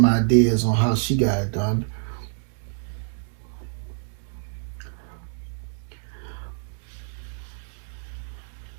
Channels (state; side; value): silent; left; 61 dB below the other